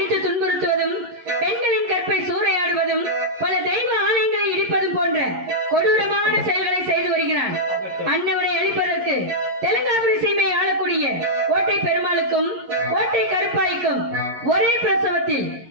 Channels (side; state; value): left; late; 11 ms